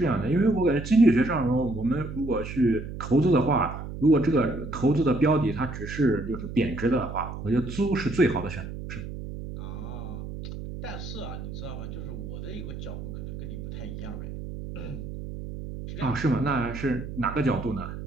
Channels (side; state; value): right; noise; hum, 9 dB below the sound